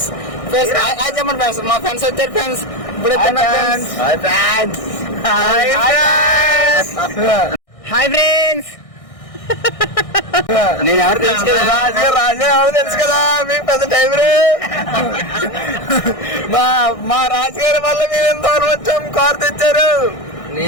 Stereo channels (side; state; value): right; late; 1.6 ms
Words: చెప్పండి ఫ్రెండ్స్, మా ఫ్రెండ్స్ వచ్చారు ఫ్రెండ్స్. ఇప్పుడు హాయ్ ఫ్రెండ్స్. నేను ఎవరు తెలుసు కదా, రాజు ఎవరు తెలుసు కదా, మీకు పెద్ద టైం రే. మా రాజుగారి వల్ల మేము ఎంత దూరం వచ్చాం, కార్ తెచ్చారు.